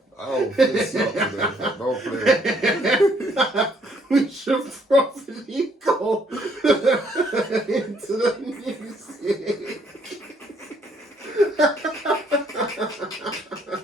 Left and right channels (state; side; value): normal; both; correlation 0.67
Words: I'll fist you up today. Don't play. We should probably go into the music.